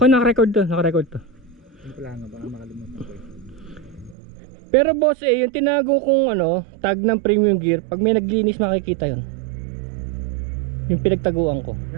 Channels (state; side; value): drops out; left; at 4.2 s